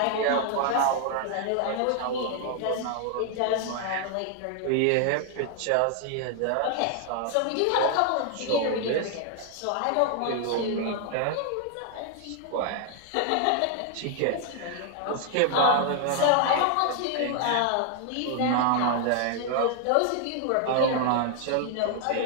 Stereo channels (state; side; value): different; both; correlation 0.00